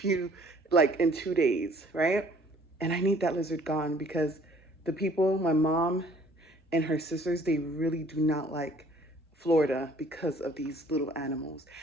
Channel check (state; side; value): normal; both; correlation 0.56